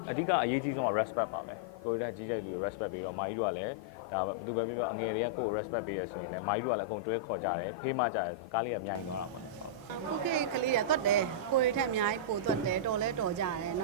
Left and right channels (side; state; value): both; normal; correlation -0.10